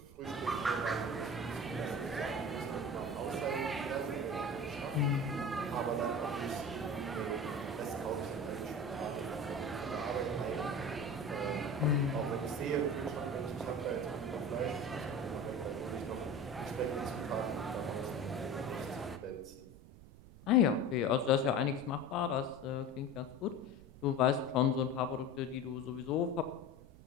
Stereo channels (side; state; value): right; noise; rumble, 19 dB below the sound